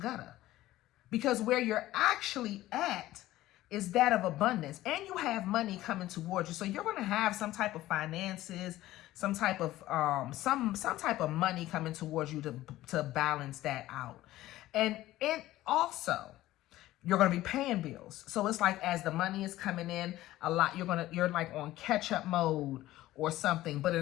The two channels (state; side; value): quieter; right; 15.7 dB